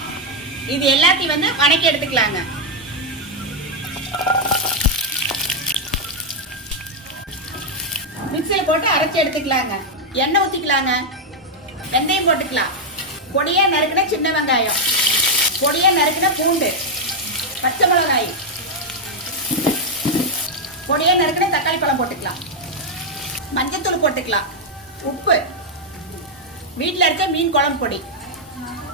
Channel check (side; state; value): both; normal; correlation 0.00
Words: இது எல்லாத்தையும் வந்து வணக்கி எடுத்துக்கலாங்க. மிக்சியில் போட்டு அரைச்சி எடுத்துக்கலாங்க. எண்ணெய் ஊற்றிக்கலாங்க. வெந்தயம் போட்டுக்கலாம். பொடியாக நறுக்கின சின்ன வெங்காயம், பொடியாக நறுக்கின பூண்டு, பச்சை மிளகாய், பொடியாக நறுக்கின தக்காளி பழம் போட்டுக்கலாம். மஞ்சத்தூள் போட்டுக்கலாம். உப்பு, வீட்டில் அரைச்ச மீன் குழம்பு பொடி,